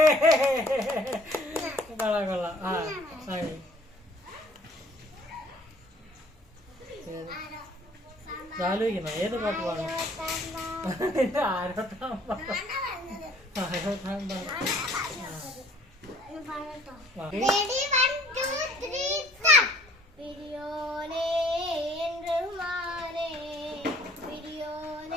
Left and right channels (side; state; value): both; normal; correlation 0.56